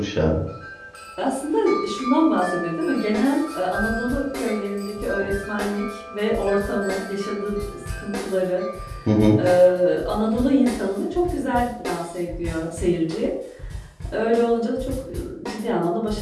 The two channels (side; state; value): both; identical; correlation 1.00